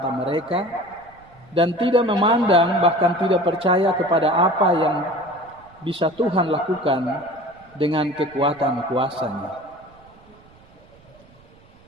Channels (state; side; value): noise; right; rumble, 27 dB below the sound